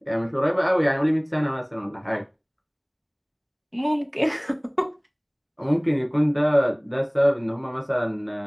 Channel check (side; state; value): both; identical; correlation 1.00